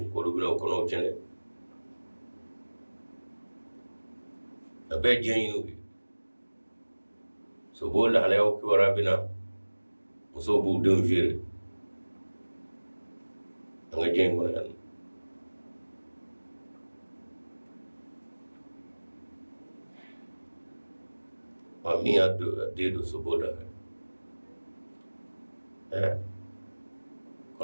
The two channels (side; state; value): both; inverted; correlation -1.00